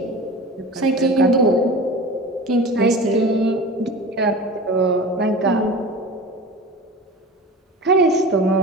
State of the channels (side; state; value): both; normal; correlation 0.34